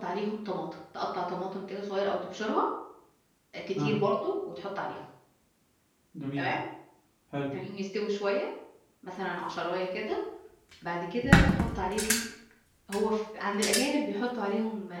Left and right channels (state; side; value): identical; both; correlation 1.00